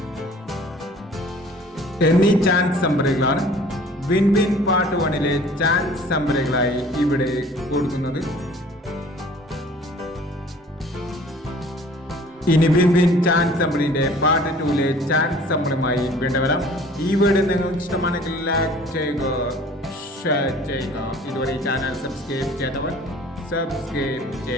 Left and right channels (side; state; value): both; normal; correlation 0.50